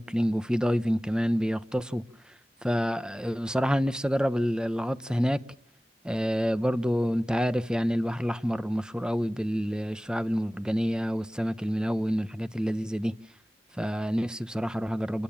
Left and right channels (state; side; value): normal; both; correlation 0.98